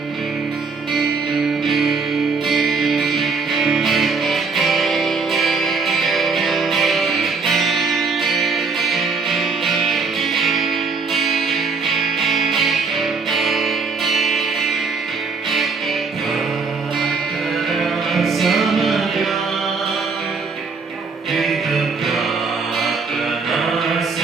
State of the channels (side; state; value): left; quieter; 4.7 dB